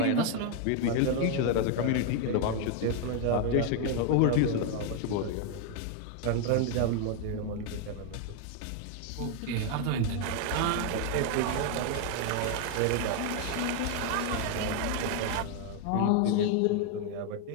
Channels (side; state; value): both; different; correlation 0.00